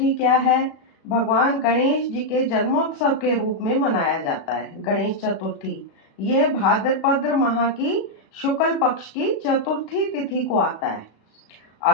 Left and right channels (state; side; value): late; right; 36 ms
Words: क्या है? भगवान गणेश जी के जन्मोत्सव के रूप में मनाया जाता है। गणेश चतुर्थी ये भाद्रपद माह की शुक्ल पक्ष की चतुर्थी तिथि को आता है।